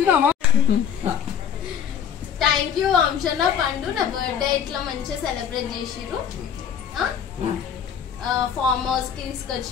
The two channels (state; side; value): quieter; right; 8.4 dB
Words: థ్యాంక్ యూ వంశన్న, పండు నా బర్త్డే ఇట్లా మంచిగా సెలబ్రేట్ చేసిర్రు, ఫామ్ హౌస్ కి